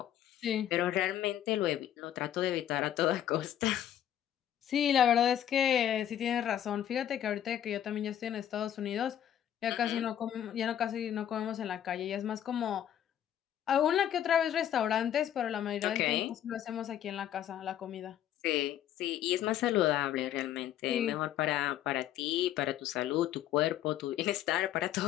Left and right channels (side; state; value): right; quieter; 10.9 dB